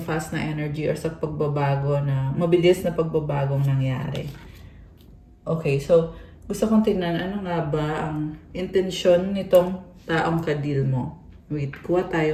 fast na energy or sa pagbabago na, mabilis na pagbabagong nangyari. Okay, so, gusto kong tingnan, ano nga ba ang intensyon nitong taong kadil mo? Wait, kuha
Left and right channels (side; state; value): both; identical; correlation 1.00